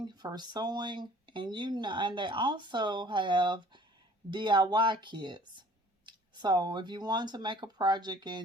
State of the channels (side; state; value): both; normal; correlation 0.51